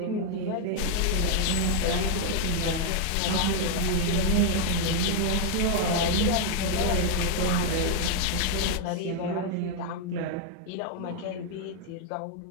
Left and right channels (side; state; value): both; different; correlation 0.00